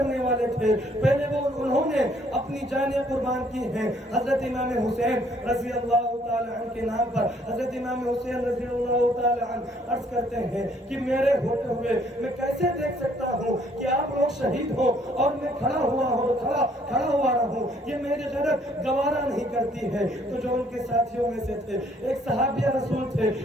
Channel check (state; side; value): normal; both; correlation 0.64